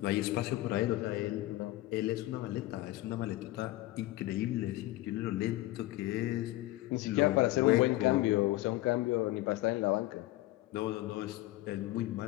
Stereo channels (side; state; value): right; quieter; 17.6 dB